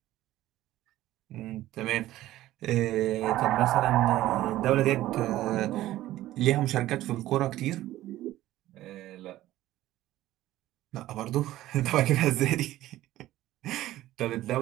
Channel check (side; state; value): left; quieter; 15.0 dB